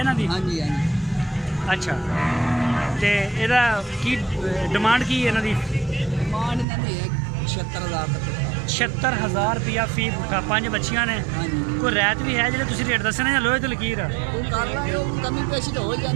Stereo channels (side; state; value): left; drops out; at 6.7 s